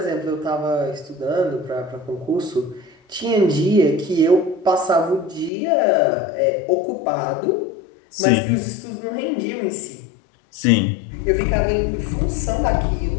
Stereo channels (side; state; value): right; drops out; at 5.5 s